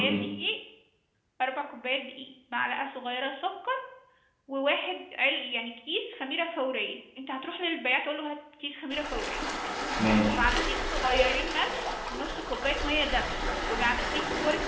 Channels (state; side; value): identical; both; correlation 1.00